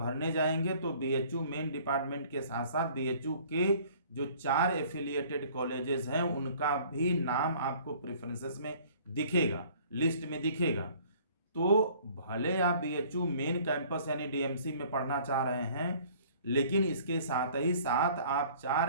जाएंगे, तो BHU मेन डिपार्टमेंट के साथ साथ BHU के जो 4 एफिलिएटेड कॉलेजेस हैं उनका भी नाम आपको प्रेफरेंसेस में दिखेगा, लिस्ट में दिखेगा। तो भले आप BHU मेन कैंपस यानी DMC में पढ़ना चाह रहे हैं, लेकिन इसके साथ ही साथ आप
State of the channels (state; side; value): inverted; both; correlation -0.54